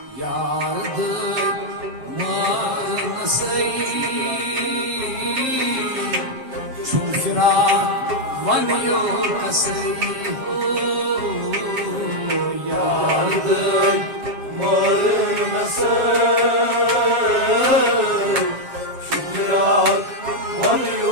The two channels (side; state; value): left; late; 7.3 ms